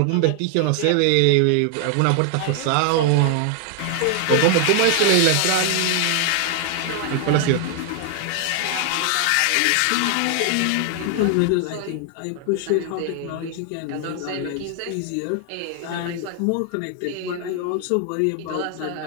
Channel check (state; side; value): different; both; correlation 0.00